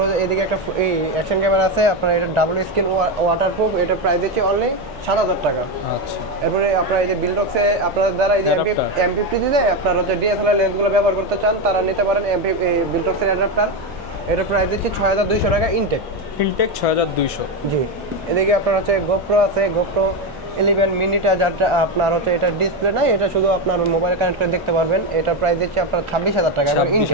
এদিকে একটা এই অ্যাকশন ক্যামেরা আছে, আপনার এটা ডাবল স্ক্রিন ওয়াটারপ্রুফ, এটা প্রাইস দিচ্ছে অনলি 7,000 টাকা। আচ্ছা। এরপরে আপনার এই যে বিলডক্সে আপনাদের দ্বারা এই যে M50 দিতে আপনার হচ্ছে DSLR লেন্সগুলো ব্যবহার করতে চান, তারা নিতে পারেন বিলডক্সের অ্যাডাপ্টার। এটা প্রাইস দিচ্ছে 6,200 টাকা ইনটেক। ইনটেক 6,200। জি। এদিকে আপনার হচ্ছে GoPro আছে, GoPro 11 মিনিটা যাটা আপনার হচ্ছে এটা ডিসপ্লে নাই, এটা শুধু আপনার মোবাইল কানেক্ট করে দেখতে পারবেন। এটা প্রাইস দিচ্ছে আপনার 26,000 টাকা, এবার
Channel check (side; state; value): right; noise; hum, 25 dB below the sound